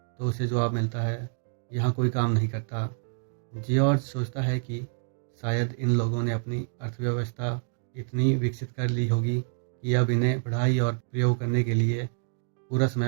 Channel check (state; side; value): silent; left; digital silence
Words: तो उसे जवाब मिलता है, यहाँ कोई काम नहीं करता। जॉर्ज सोचता है कि शायद इन लोगों ने अपनी अर्थव्यवस्था इतनी विकसित कर ली होगी कि अब इन्हें पढ़ाई और प्रयोग करने के लिए पूरा समय